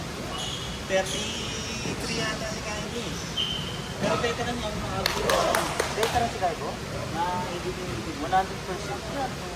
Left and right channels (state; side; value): identical; both; correlation 1.00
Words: 33 yata si Kylie. Pero veteran niya, mga siya. Veteran si Kaibo? Na ibigin 100% yan.